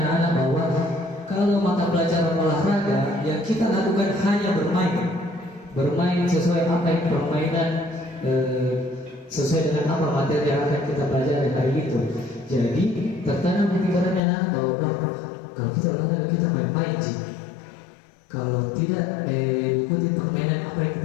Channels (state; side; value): drops out; right; at 14.2 s